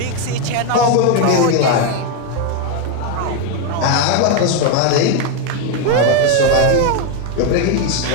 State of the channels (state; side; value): different; both; correlation 0.01